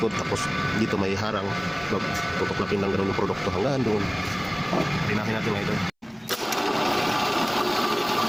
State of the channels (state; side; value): identical; both; correlation 1.00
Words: Tapos dito may harang. Tutuklapin lang gano'n yung produkto hanggang doon. Rinahin natin mga idol.